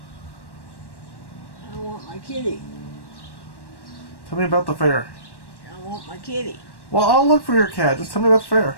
I want my kitty. Tell me about the fair. I want my kitty. Well, I'll look for your cat. Just tell me about the fair.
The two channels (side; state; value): right; late; 1.1 ms